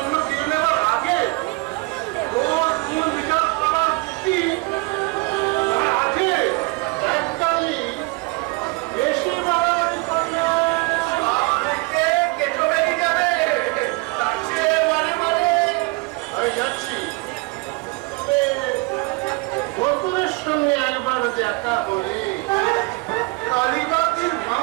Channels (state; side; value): quieter; left; 26.3 dB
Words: কেড়ে নেবার আগে তোর কোন বিচার করার যুক্তি আছে? একটাই বেশি বাড়াবাড়ি করলে কেঁচো বেরিয়ে যাবে, তার চেয়ে মানে আমি যাচ্ছি। তবে বন্ধুদের সঙ্গে একবার দেখা হলে কালীবাতির